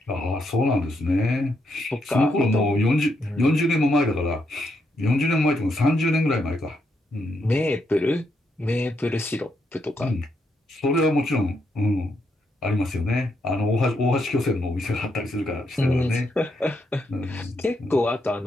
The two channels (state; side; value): normal; both; correlation 0.79